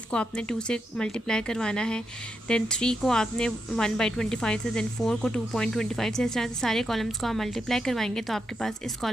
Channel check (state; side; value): normal; both; correlation 0.84